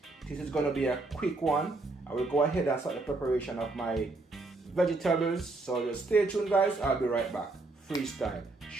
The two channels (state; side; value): quieter; left; 3.3 dB